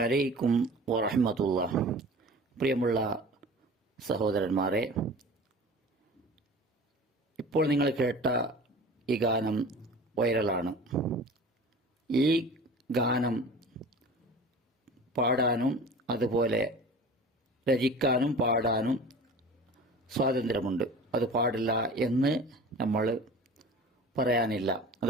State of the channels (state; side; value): normal; both; correlation 0.40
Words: വറഹ്മത്തുള്ളാഹി. പ്രിയമുള്ള സഹോദരന്മാരെ, ഇപ്പോൾ നിങ്ങൾ കേട്ട ഈ ഗാനം വൈറലാണ്. ഈ ഗാനം പാടാനും അതുപോലെ രചിക്കാനും പാടാനും സ്വാതന്ത്ര്യമുണ്ട്. അത് പാടില്ല എന്ന് നമ്മൾ പറയാനില്ല.